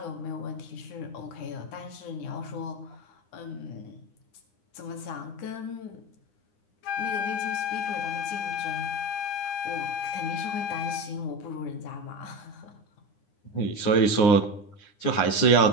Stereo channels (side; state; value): right; late; 9.8 ms